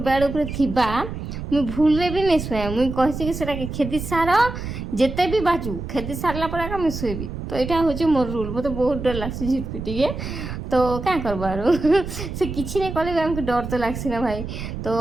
बेड उपरे थिबा मुई भूल भी नहीं शुए मुई कहे कि खेती सार जिते भी बाजू खेती सारला पर आका मुई शुएबी तो यहाँ हूँ मोर रूल मत बहुत डर लगसी झिटपिटी के तो क्या करबार से किसी नहीं कले आमको डर तो लगसी ना भाई तो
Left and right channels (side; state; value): right; noise; rumble, 7 dB below the sound